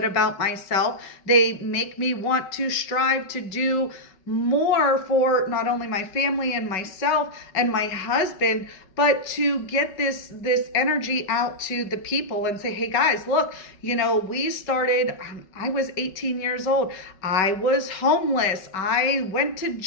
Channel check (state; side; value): late; right; 5.3 ms